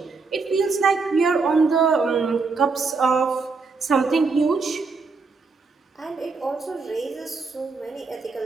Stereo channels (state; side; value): quieter; left; 4.4 dB